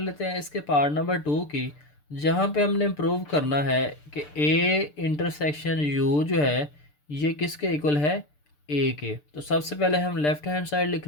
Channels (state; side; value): late; right; 6.7 ms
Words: हैं इसके पार्ट नंबर 2 की, जहाँ पे हमने प्रूव करना है कि ए इंटरसेक्शन यू जो है ये किसके इक्वल है, ए के। तो सबसे पहले हम लेफ़्ट हैंड साइड लिख